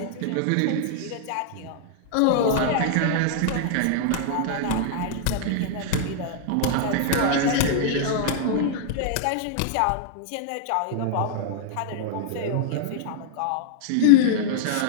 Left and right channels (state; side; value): different; both; correlation -0.01